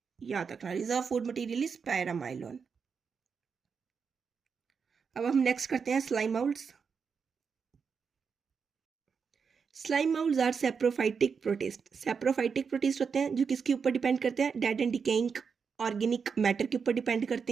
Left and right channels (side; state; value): left; quieter; 5.9 dB